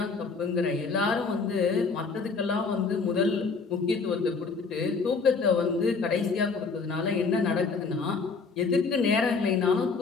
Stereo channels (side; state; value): right; quieter; 4.6 dB